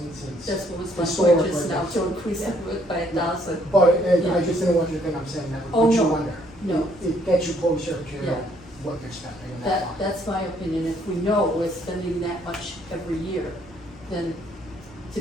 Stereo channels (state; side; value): normal; both; correlation 0.67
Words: since. That's what was my point historically, just now, that's- to increase it by 1,000. But, and I Yeah. just didn't want you to think I'm saying that would Oh, put you no. under. No. It gets you closer Yeah. to what you're spending in that That, line. that's my opinion, if we know we're spending that much every year, then to